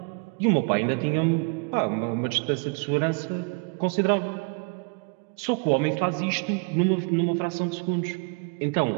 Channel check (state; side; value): quieter; left; 34.8 dB